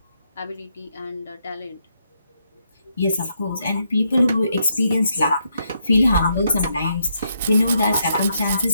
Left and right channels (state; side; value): inverted; both; correlation -0.78